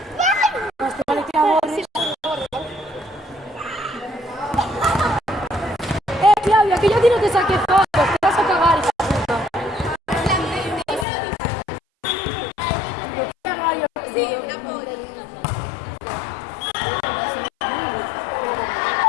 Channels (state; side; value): drops out; right; at 11.1 s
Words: Más te vale que la borres. te saqué fotos, te vas a cagar, hija de puta. No te cagas, yo. Sí, una polla.